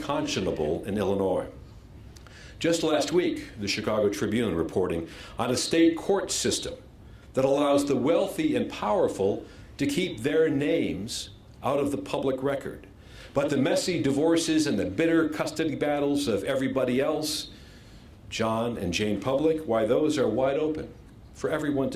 in Illinois. Just last week, the Chicago Tribune reporting on a state court system that allows the wealthy and powerful to keep their names out of the public record. But the messy divorces and the bitter custody battles of everybody else, John and Jane Public, why, those are wide open for everyone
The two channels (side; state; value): both; identical; correlation 1.00